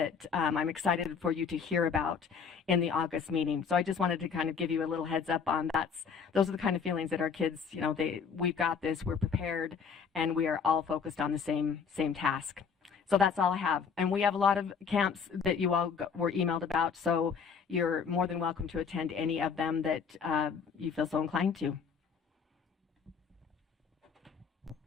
I'm excited for you to hear about in the August meeting. So I just wanted to kind of give you a little heads up on those are the kind of feelings that our kids, we've got this, we're prepared, and we are all focused on the same task. So that's all I have. And we have a lot of camps that you all were emailed about, so you're more than welcome to attend any of them that you feel so inclined to.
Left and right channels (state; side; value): quieter; right; 6.3 dB